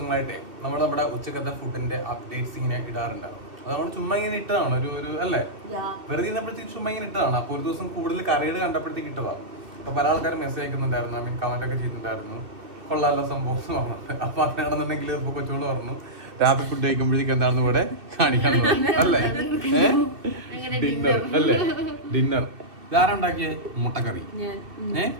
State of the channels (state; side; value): late; left; 2.7 ms